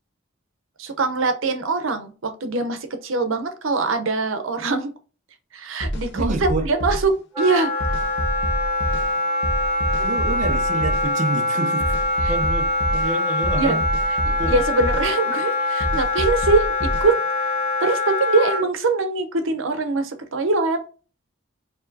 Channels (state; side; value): normal; both; correlation -0.13